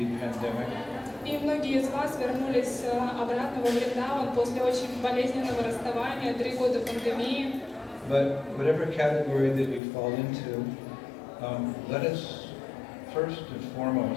pandemic. И многие из вас вернулись обратно во Вриндаван после очень болезненного расставания, 3 года пандемии. But whatever category that you fall into, let us first and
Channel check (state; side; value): drops out; right; at 9.8 s